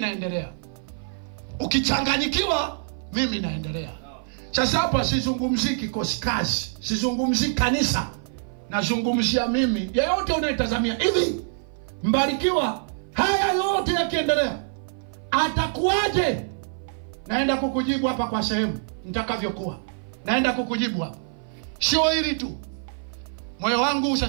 Ukichanganyikiwa mimi naendelea. Sasa hapa sizungumzii kikosi kazi, sizungumzii kanisa. Nazungumzia mimi. Yeyote unayetazamia hivi, mbarikiwa haya yote yakiendelea atakuwaje? Naenda kukujibu hapa kwa sehemu nitakavyokuwa. Naenda kukujibu hapa. Sio hili tu. Moyo wangu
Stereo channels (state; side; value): silent; left; 57 dB below the other